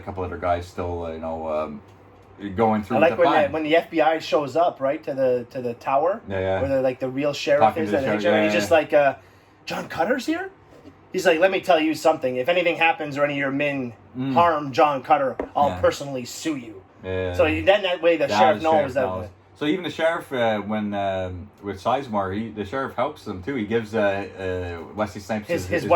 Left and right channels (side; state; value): both; identical; correlation 1.00